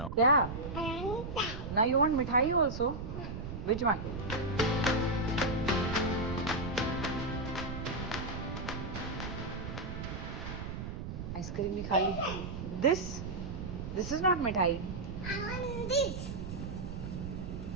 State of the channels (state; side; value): noise; right; rumble, 6 dB below the sound